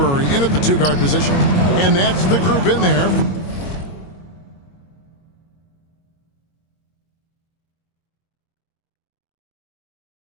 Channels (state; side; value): late; right; 22 ms